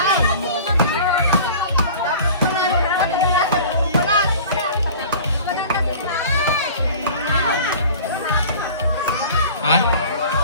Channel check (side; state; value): both; inverted; correlation -0.42